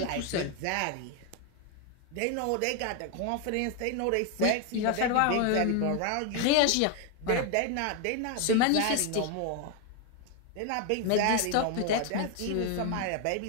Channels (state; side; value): different; both; correlation 0.01